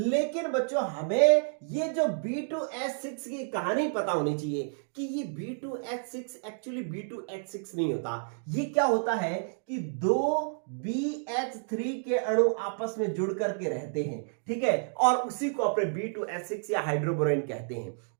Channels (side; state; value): left; silent; digital silence